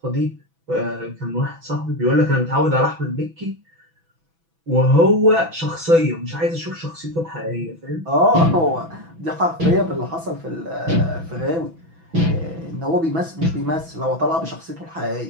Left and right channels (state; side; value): late; left; 6.1 ms